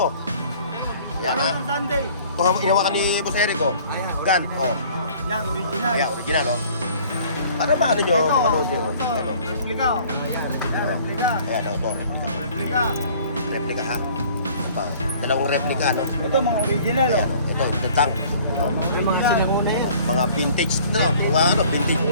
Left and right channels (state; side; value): inverted; both; correlation -0.52